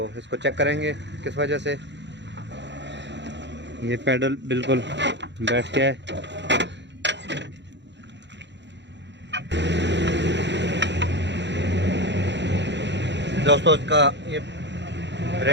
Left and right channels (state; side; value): late; left; 0.52 ms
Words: इसको चेक करेंगे किस वजह से। ये पैडल बिल्कुल बैठ गया है। दोस्तों इसका ये